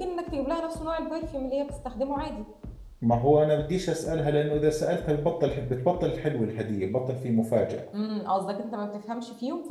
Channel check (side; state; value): both; identical; correlation 1.00